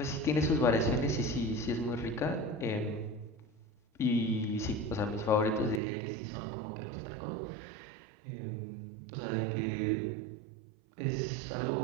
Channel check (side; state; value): left; drops out; at 5.8 s